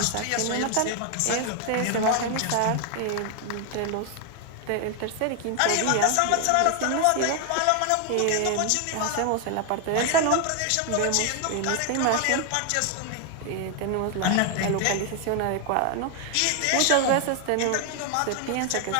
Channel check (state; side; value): different; both; correlation 0.00